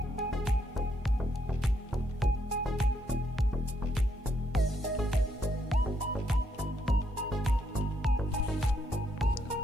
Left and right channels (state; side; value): normal; both; correlation 0.75